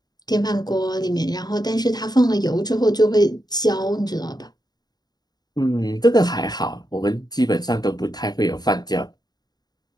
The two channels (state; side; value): late; right; 0.20 ms